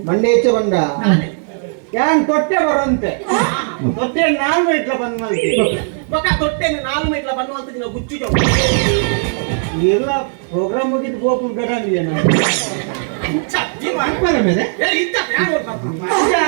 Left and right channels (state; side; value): silent; left; 67 dB below the other